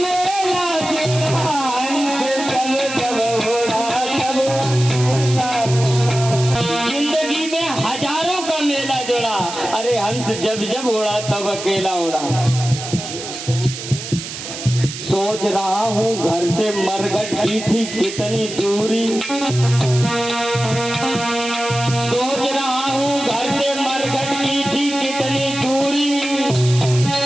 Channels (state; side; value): noise; right; hiss, 9 dB below the sound